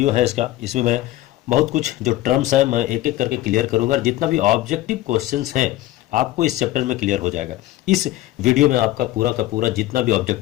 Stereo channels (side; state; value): right; quieter; 15.6 dB